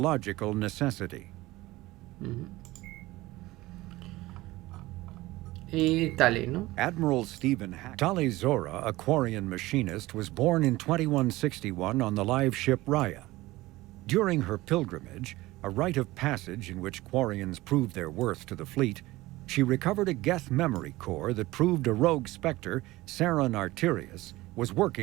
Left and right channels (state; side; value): quieter; left; 18.8 dB